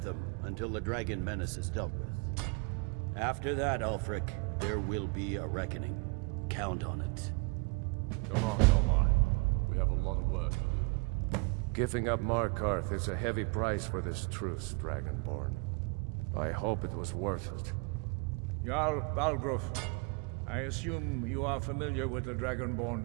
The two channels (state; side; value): quieter; left; 31.9 dB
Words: them until the Dragon Menace is dealt with. After that, Ulfric, there will be a reckoning. Count on it. Come on. We have a lot of work to do. Giving up Markarth is a heavy price for this truce, Dragonborn. I hope it was worth it. Jarl Balgruuf, I assume you are familiar with the